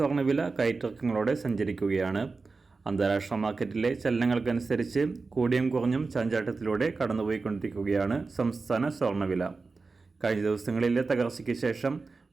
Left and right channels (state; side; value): quieter; left; 4.1 dB